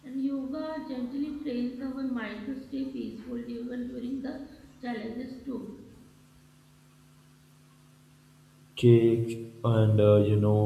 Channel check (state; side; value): identical; both; correlation 1.00